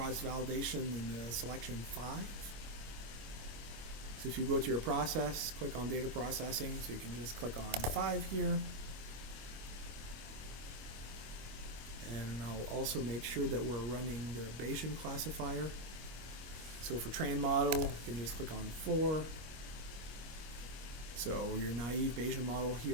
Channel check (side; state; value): left; late; 25 ms